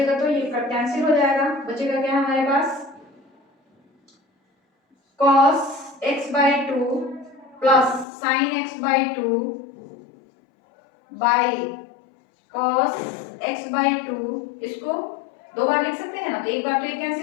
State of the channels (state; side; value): drops out; right; at 8.1 s